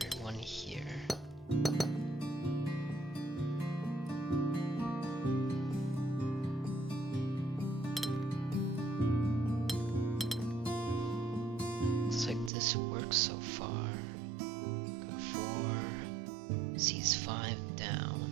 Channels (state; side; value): drops out; left; at 12.5 s